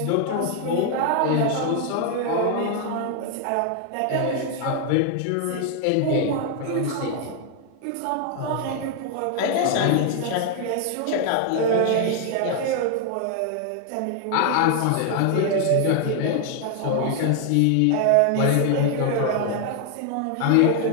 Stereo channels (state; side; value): different; both; correlation 0.00